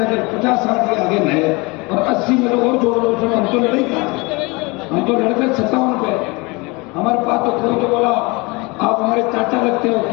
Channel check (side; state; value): right; quieter; 26.1 dB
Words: अगर 50-60 के आगे नए और 80 में लोग और जोड़ लो, उसमें हम तो लड़ाई था, हम तो लड़ते 57 पे। हमारे पास तो कोई तो बोला आप हमारे चाचा लगते हो,